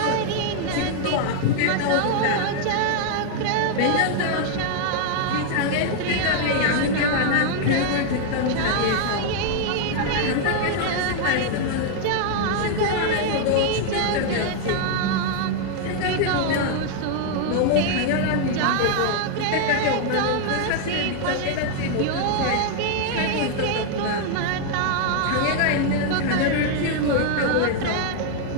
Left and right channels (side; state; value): both; different; correlation 0.00